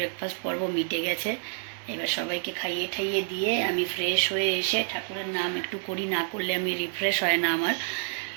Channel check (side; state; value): left; silent; digital silence